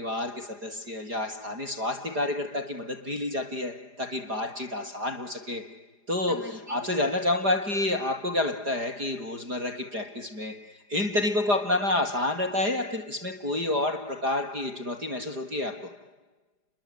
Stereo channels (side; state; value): left; late; 4.9 ms